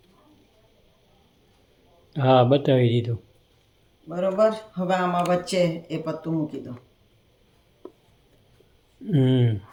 હા બતાવી દીધું. બરોબર. હવે આમાં વચ્ચે એ પત્તું મૂકી દો.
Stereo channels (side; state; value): both; identical; correlation 1.00